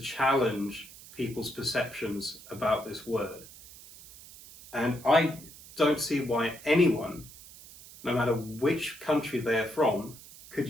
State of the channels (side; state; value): right; noise; hiss, 18 dB below the sound